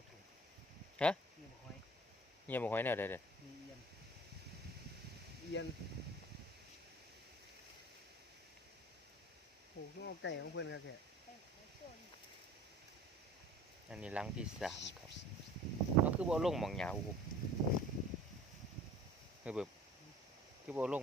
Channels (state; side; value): normal; both; correlation 0.46